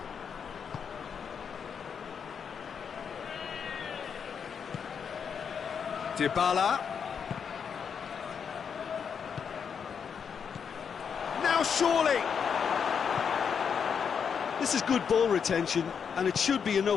Dybala. surely! This is good ball retention, and it should be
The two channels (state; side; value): quieter; right; 6.9 dB